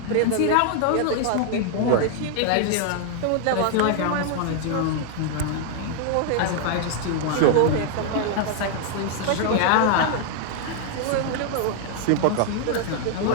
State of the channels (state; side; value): different; both; correlation 0.00